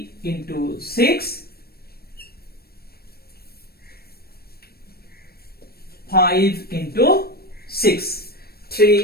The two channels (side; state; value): right; late; 0.45 ms